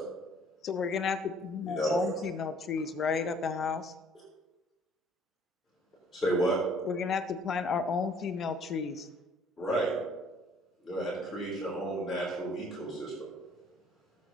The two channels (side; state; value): both; normal; correlation 0.58